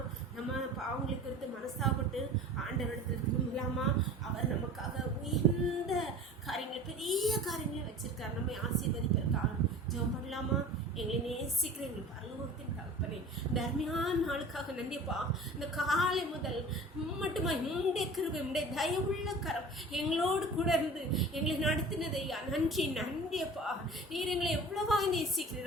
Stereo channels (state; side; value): normal; both; correlation 0.41